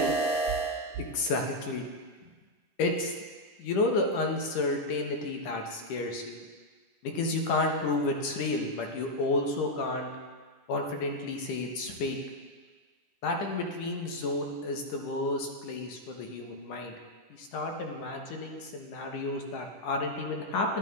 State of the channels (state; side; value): late; right; 10 ms